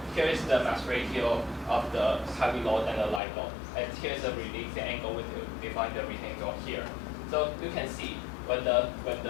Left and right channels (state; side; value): drops out; right; at 3.2 s